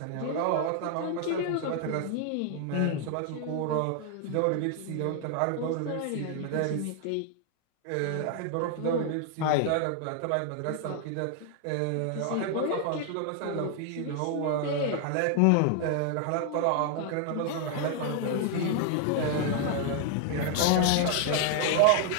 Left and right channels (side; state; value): both; different; correlation 0.00